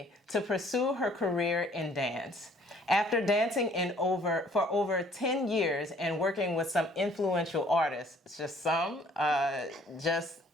to pursue her career in dance. After dancing for over 10 years and working with some influential artists, just a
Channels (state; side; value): normal; both; correlation 0.58